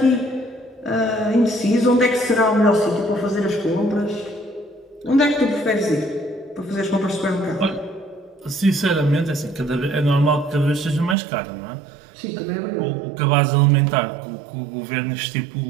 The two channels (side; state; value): left; drops out; at 11.2 s